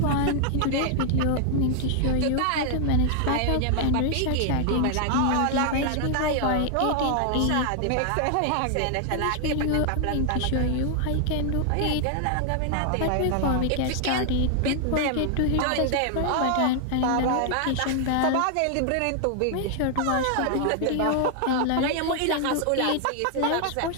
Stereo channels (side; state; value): both; different; correlation 0.00